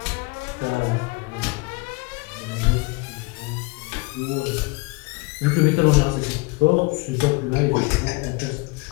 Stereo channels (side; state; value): right; quieter; 26.0 dB